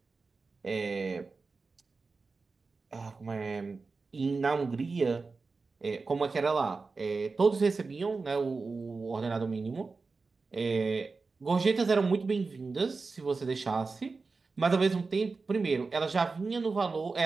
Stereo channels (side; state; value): left; quieter; 4.2 dB